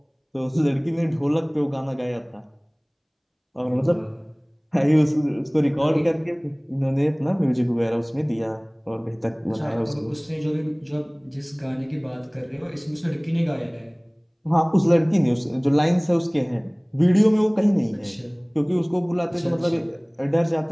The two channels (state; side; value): identical; both; correlation 1.00